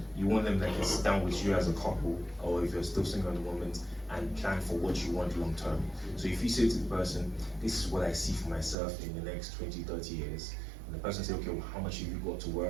you want them that can sit down with you as a couple, or if you're still single at the moment, and plan for what you want long term. So if you say to the person, this is what I see for myself in the next 20, 30 years, and the person says, okay, well, how much have you got to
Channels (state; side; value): drops out; left; at 8.8 s